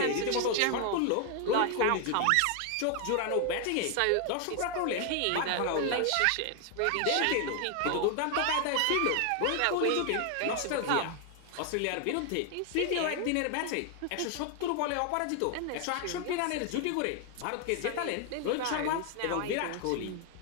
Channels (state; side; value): different; both; correlation 0.00